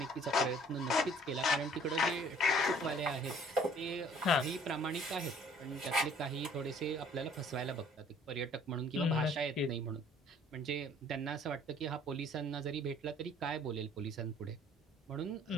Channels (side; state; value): both; normal; correlation 0.56